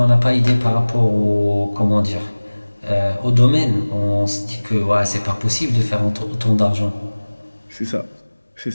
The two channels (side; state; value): both; inverted; correlation -1.00